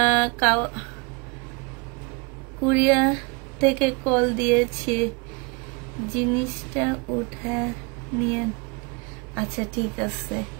কুরিয়া থেকে কল দিয়েছি, জিনিসটা উঠে নিয়ে। আচ্ছা ঠিক আছে,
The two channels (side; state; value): left; quieter; 30.6 dB